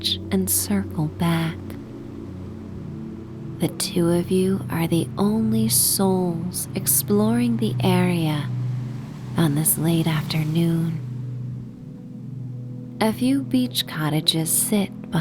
and circle back. The two of you are the only souls exploring the area on this late afternoon. A few beach cottages sit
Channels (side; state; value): both; identical; correlation 1.00